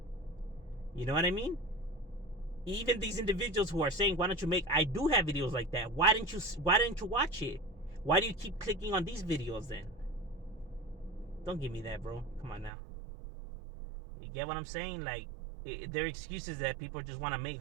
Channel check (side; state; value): left; drops out; at 12.7 s